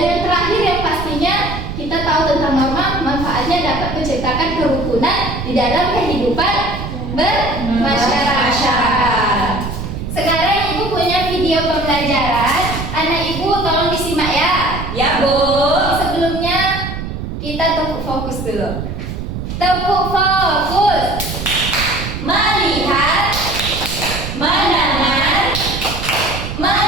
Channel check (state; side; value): noise; right; rumble, 6 dB below the sound